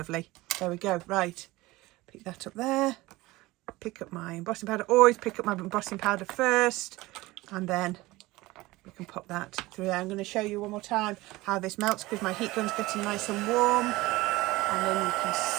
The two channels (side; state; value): left; quieter; 19.8 dB